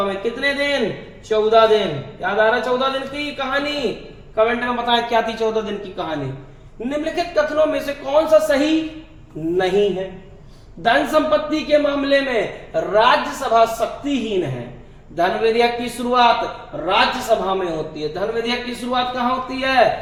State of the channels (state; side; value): identical; both; correlation 1.00